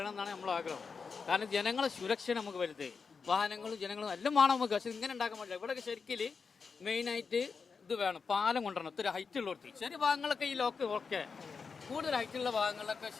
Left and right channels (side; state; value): right; quieter; 5.3 dB